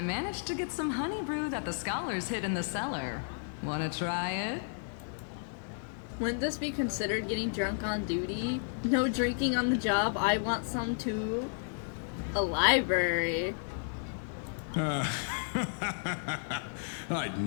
managed to get some honey brew that the scholars hid in the cellar. Wanna try it? Wouldn't this be considered getting drunk on duty? No drinking on the job. I want some too. A library. I'd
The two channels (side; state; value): right; silent; digital silence